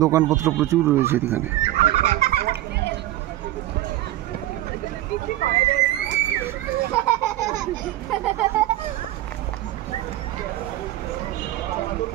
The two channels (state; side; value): quieter; left; 15.1 dB